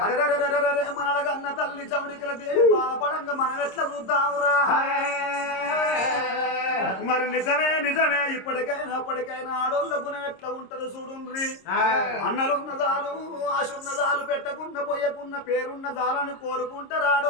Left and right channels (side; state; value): right; late; 26 ms